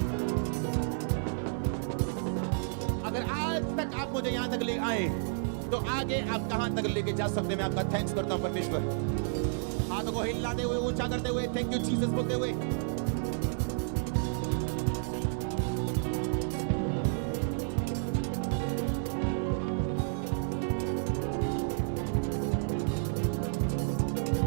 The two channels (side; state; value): left; silent; 57 dB below the other